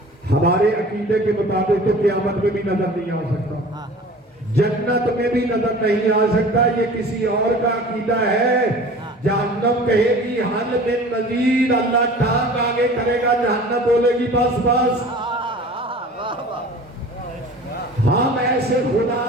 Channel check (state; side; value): normal; both; correlation 0.42